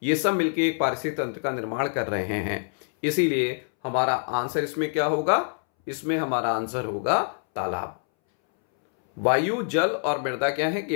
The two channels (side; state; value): right; silent; 61 dB below the other